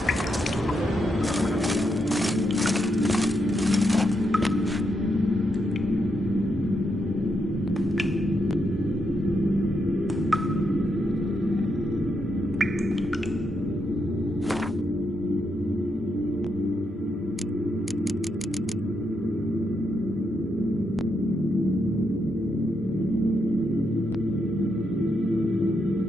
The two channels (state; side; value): normal; both; correlation 0.81